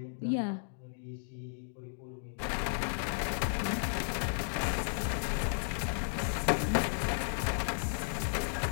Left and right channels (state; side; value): silent; right; digital silence